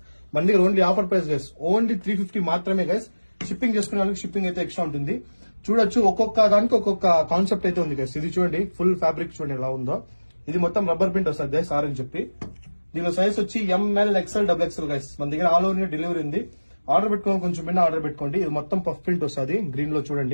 మన దగ్గర only offer price guys, only 350 మాత్రమే గైస్. షిప్పింగ్ చేసుకునే వాళ్ళకి షిప్పింగ్ అయితే ఎక్స్ట్రా ఉంటుంది. చూడొచ్చు, ఒక్కొక్క దానికి ఒక్కొక్క కాన్సెప్ట్ అయితే ఉంది గైస్. ఇది చూడండి, ఫుల్ ఫ్యాబ్రిక్ చూడండి ఎలా ఉందో. ఇది మొత్తం రబ్బర్ ప్రింట్ వస్తుంది గైస్, ఆర్ అని చెప్పి. దీనిలో సైజ్ వచ్చి ML, XL, double XL guys. మన దగ్గర ఆల్ ఓవర్ డెలివరీ ఉంది. ఆర్డర్ పెట్టుకోవాలి, కొంచెం బిన్న ఆర్డర్ పెట్టుకోండి. ఇది మొత్తం పఫ్ ప్రింట్ వస్తుంది, గ్రీన్ లో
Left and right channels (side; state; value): both; inverted; correlation -1.00